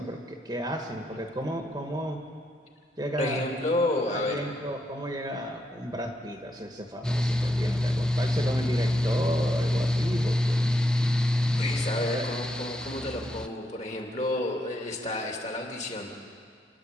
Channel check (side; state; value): both; normal; correlation 0.78